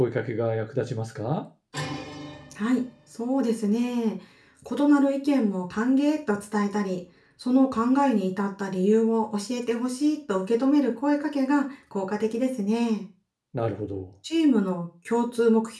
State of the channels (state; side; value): identical; both; correlation 1.00